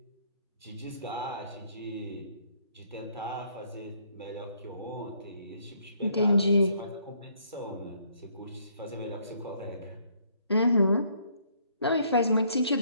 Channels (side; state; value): both; inverted; correlation -0.67